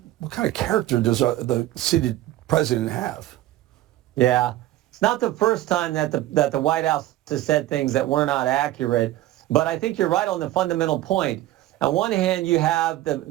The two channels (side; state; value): left; quieter; 15.1 dB